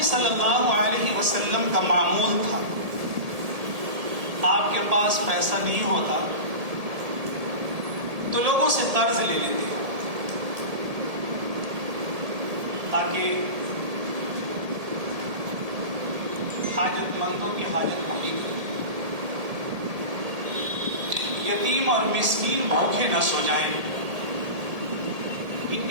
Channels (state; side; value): late; left; 1.8 ms